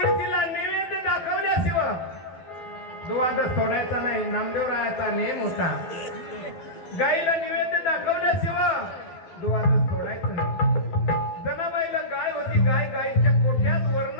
नैवेद्य दाखवल्याशिवाय दुवाद सोडायचा नाही. नामदेवरायाचा नेम होता. गाईला नैवेद्य दाखवल्याशिवाय दुवाद सोडायचं नाही. जनाबाईला गाय होती. गाईच्या कोठ्यात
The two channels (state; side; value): late; right; 12 ms